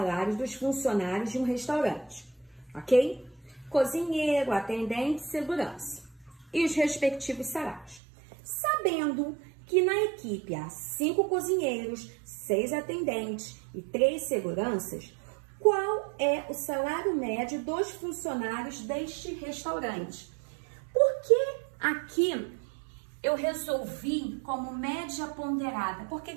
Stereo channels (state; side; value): drops out; left; at 8.0 s